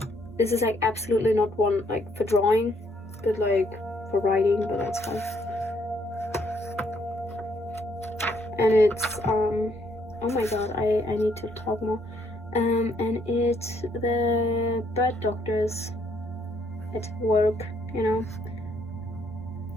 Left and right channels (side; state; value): both; normal; correlation 0.69